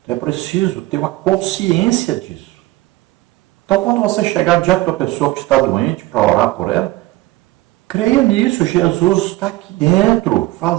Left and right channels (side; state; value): left; quieter; 18.3 dB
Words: Então é preciso ter uma consciência disso. Então quando você chegar diante da pessoa que está doente para orar por ela, creia nisso. Jesus está aqui dentro,